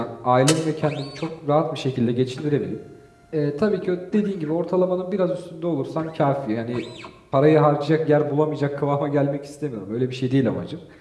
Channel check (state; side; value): identical; both; correlation 1.00